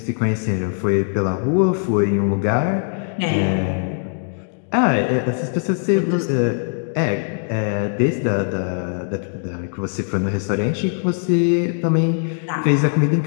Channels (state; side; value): silent; right; digital silence